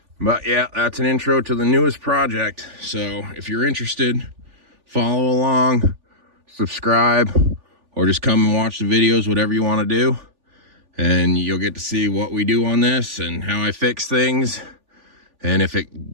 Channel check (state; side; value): late; left; 3.4 ms